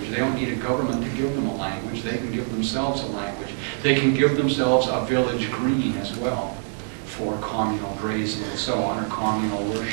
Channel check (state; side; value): silent; left; 62 dB below the other